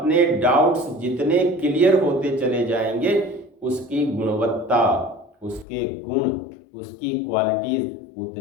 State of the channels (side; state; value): right; drops out; at 5.7 s